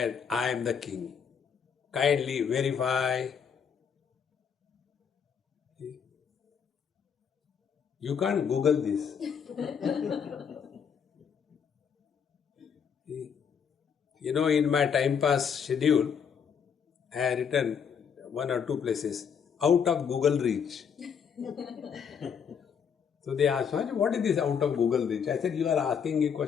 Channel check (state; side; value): quieter; right; 7.1 dB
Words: I am the king. Kindly verify. You can't Google this. In my time pass schedule, I have written one or two places, out of Google reach. So they asked, what is this out of Google reach? I said, you are asking a